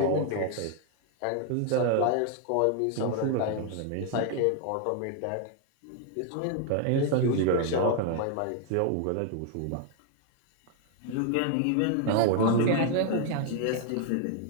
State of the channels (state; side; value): different; both; correlation 0.00